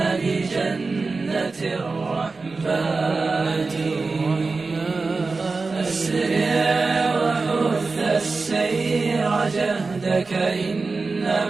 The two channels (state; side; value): quieter; left; 4.0 dB